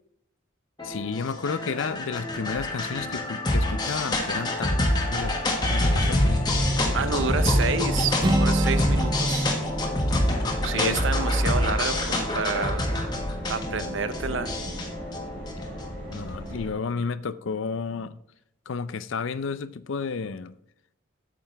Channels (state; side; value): normal; both; correlation 0.54